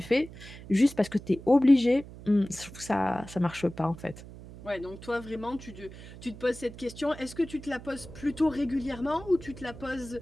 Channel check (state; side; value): noise; right; hum, 16 dB below the sound